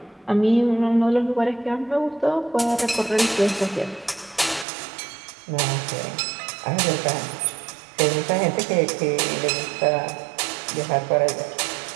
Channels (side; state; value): left; drops out; at 4.7 s